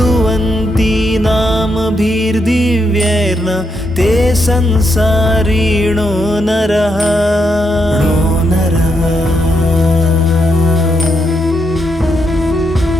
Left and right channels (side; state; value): both; normal; correlation 0.80